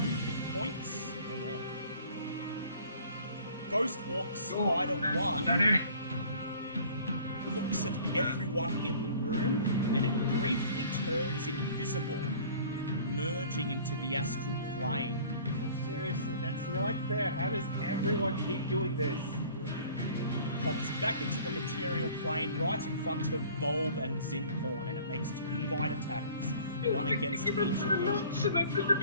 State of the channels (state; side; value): inverted; both; correlation -0.50